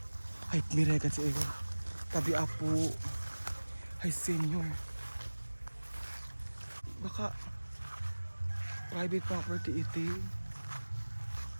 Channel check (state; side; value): inverted; both; correlation -1.00